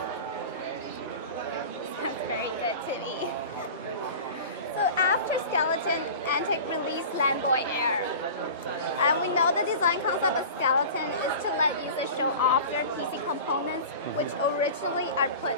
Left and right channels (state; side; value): inverted; both; correlation -0.36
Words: Sounds very good to me. So after Skeleton, Antec released Landboy Air. And we know the design concept of Skeleton is to let users show off their PC components, which originally are put